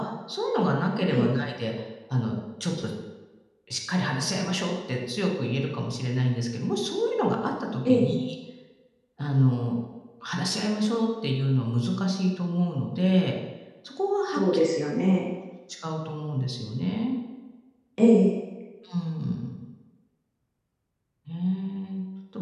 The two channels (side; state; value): both; identical; correlation 1.00